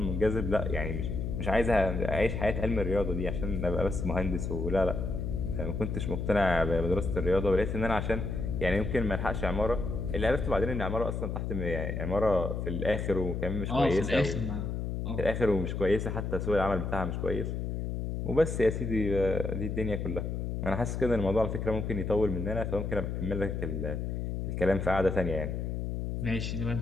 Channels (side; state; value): left; noise; hum, 3 dB below the sound